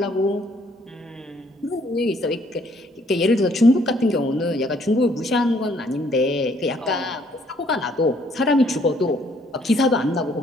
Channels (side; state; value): both; normal; correlation 0.65